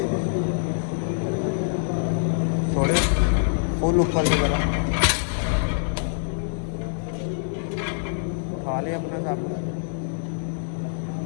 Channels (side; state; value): right; silent; 62 dB below the other